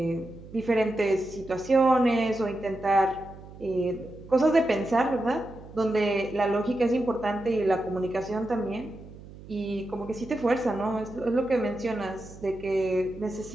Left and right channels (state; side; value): noise; right; hum, 17 dB below the sound